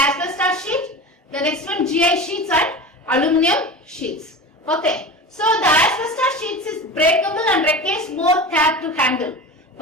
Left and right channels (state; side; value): normal; both; correlation 0.31